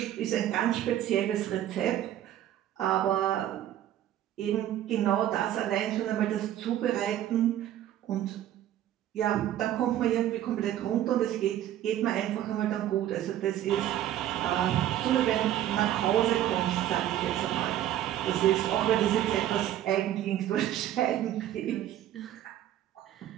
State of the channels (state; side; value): quieter; left; 12.2 dB